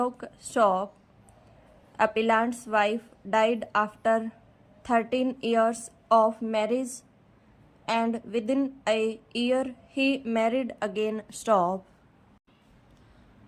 Stop. Appellant's wife died after 13 years of marriage and within a year he married again. Stop.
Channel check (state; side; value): identical; both; correlation 1.00